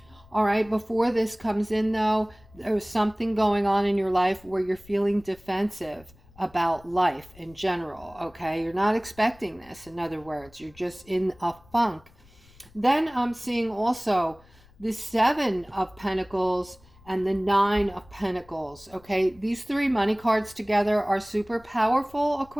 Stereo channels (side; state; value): left; noise; rumble, 26 dB below the sound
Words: All right, before this comes in though, there's something going on in your life where you're feeling defensive about life in general, okay? You're not expecting this, in other words. You're just in a funk. Then I'm seeing also the 7 of Pentacles and the 9 of Pentacles, okay? These 3 money cards together are super powerful,